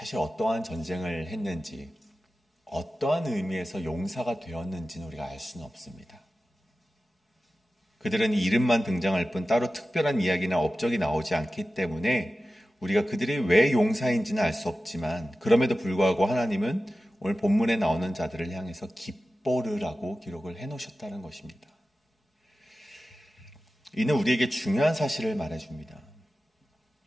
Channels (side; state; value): both; normal; correlation 0.94